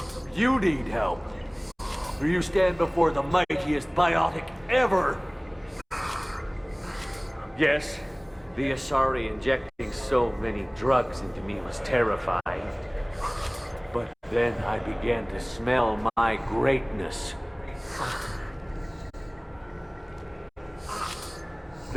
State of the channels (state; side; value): identical; both; correlation 1.00